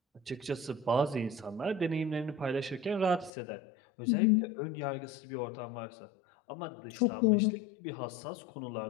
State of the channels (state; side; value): drops out; right; at 3.3 s